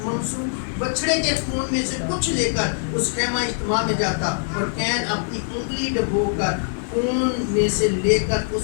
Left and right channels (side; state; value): right; silent; digital silence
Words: منسوخ بچڑے کے خون میں سے کچھ لے کر اس خیمہ اجتماع میں جاتا اور کین اپنی انگلی ڈبو کر خون میں سے لے کر